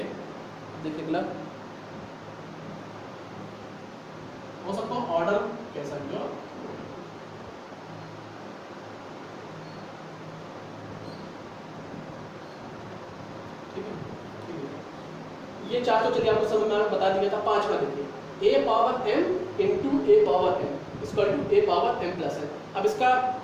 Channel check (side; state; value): both; identical; correlation 1.00